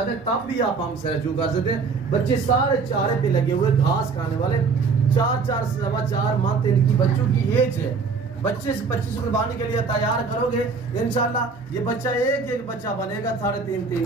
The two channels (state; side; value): quieter; left; 4.8 dB